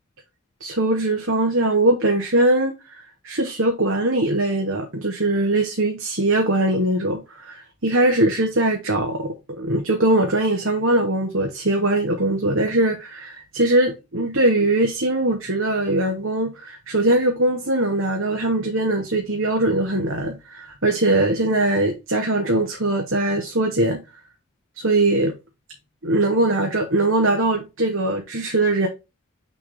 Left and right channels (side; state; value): both; normal; correlation -0.13